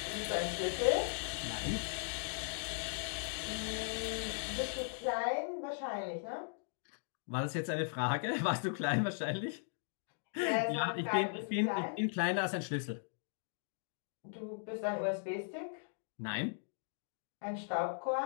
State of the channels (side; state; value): right; silent; digital silence